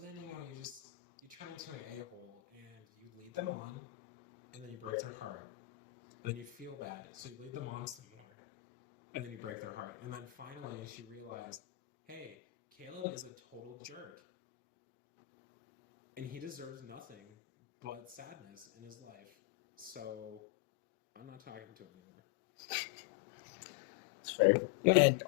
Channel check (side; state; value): right; quieter; 19.1 dB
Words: you turn into an a-hole, and you lead them on, and then you break their heart, and then you feel bad, so you lead them on some more, and then you break their heart, and then finally she realized, hey, Caleb is a total jerk. And he deserves nothing but sadness in his life. So I'm not talking to him anymore. It's fair. Yep. And